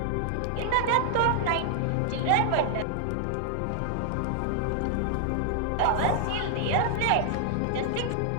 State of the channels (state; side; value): different; both; correlation -0.01